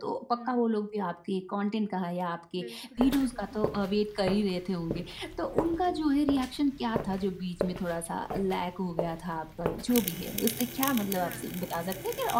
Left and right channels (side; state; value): both; identical; correlation 1.00